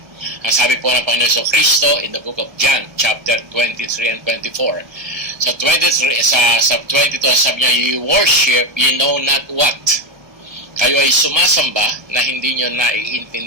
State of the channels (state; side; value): late; left; 1.2 ms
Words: Ang sabi po ng Panginoon Hesus Kristo in the book of John, chapter 23 and 24. Sa 23, sa 22, sabi niya, you worship, you know not what. Kayo ay sumasamba na hindi nyo